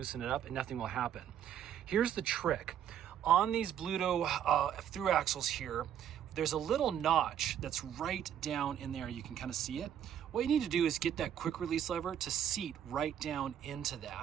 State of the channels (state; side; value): quieter; left; 9.8 dB